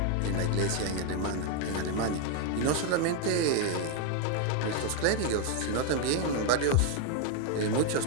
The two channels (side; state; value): both; different; correlation 0.00